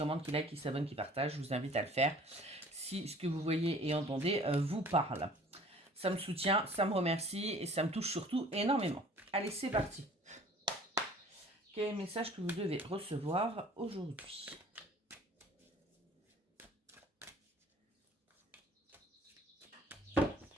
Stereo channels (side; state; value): both; normal; correlation 0.51